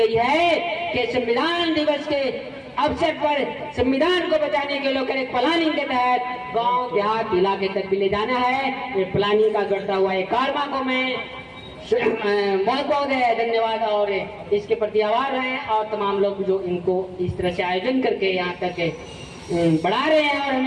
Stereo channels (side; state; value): both; identical; correlation 1.00